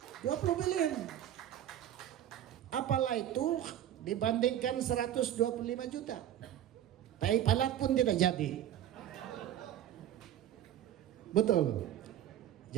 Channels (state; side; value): quieter; left; 11.4 dB